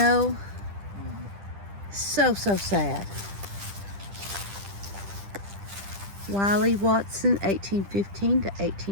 So sad. Wiley Watson, 1815 to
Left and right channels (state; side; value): late; left; 10 ms